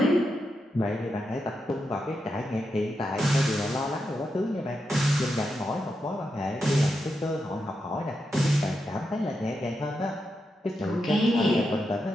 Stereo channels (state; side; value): normal; both; correlation 0.86